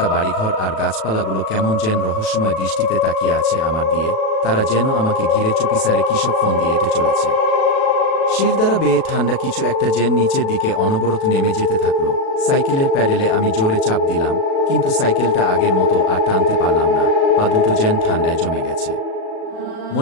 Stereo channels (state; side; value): late; right; 37 ms